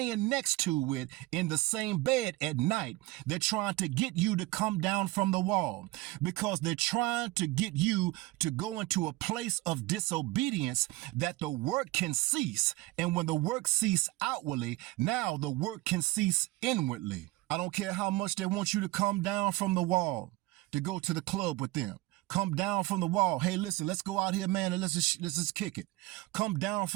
next to with in the same bed at night, they're trying to get you to come down from the wall because they're trying to get you to go into a place of disobedience that the work can cease. And when the work cease outwardly, now the work can cease inwardly. I don't care how much they want you to come down from the wall to go to the club with them. Come down from the wall. Hey, listen, let's go out here, man, and let's just kick it. Come down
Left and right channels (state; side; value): quieter; left; 19.8 dB